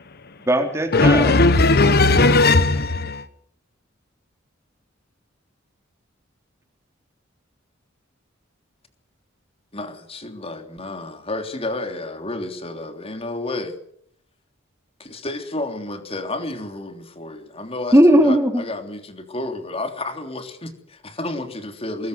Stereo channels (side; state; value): both; normal; correlation 0.50